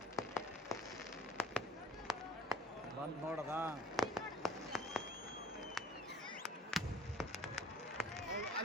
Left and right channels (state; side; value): normal; both; correlation 0.50